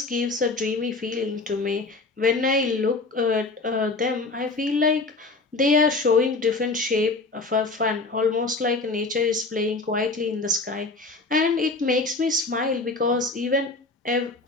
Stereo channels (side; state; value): right; quieter; 3.5 dB